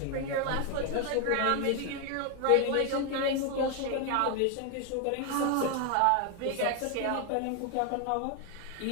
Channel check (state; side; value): different; both; correlation 0.01